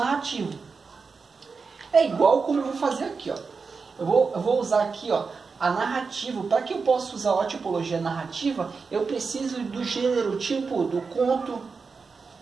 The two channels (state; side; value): quieter; left; 4.9 dB